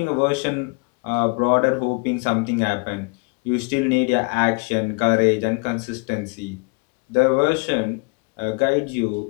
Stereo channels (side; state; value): right; quieter; 32.4 dB